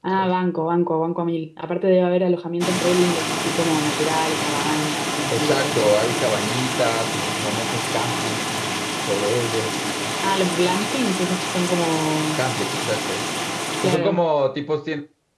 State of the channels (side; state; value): both; identical; correlation 1.00